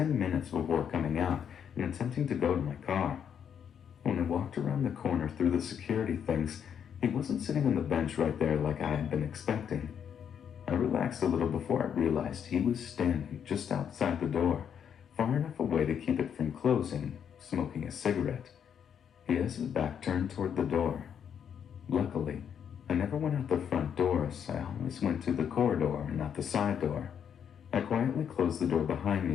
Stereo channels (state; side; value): quieter; right; 8.2 dB